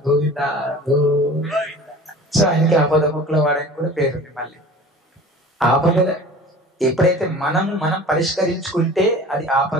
గోవింద గోవింద. సో ఆయనకి ఆపద మొక్కల వాడని కూడా పేరుంది. మళ్ళీ ఆపద ఎప్పుడైతే మనం పరిష్కరించుకుంటే అది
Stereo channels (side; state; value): both; normal; correlation 0.41